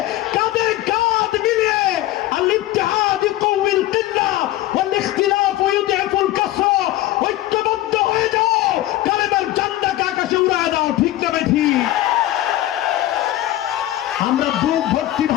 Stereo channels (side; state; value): right; quieter; 15.3 dB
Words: কাঁধে কাঁধ মিলিয়ে আল-ইত্তিহাদ ইউকাউইল কিল্লা ওয়াল ইখতিলাফ ইউদঈফুল কাসরা, ঐক্যবদ্ধ হয়ে যাও, কালেমার ঝান্ডাকে আকাশে উড়ায় দাও। ঠিক না বেঠি? আমরা বুক ভর্তি